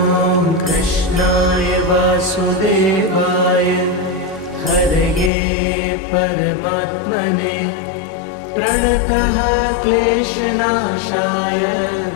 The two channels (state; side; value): drops out; right; at 5.3 s